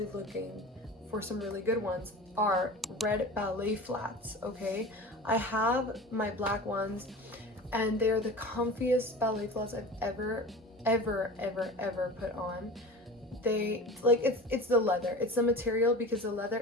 looking for some really good ones, are red ballet flats, okay? I have my black ones, and they are the comfiest ballet flats I've ever put on. They, like, it's the leather, it's the material, because the leather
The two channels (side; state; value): both; normal; correlation 0.35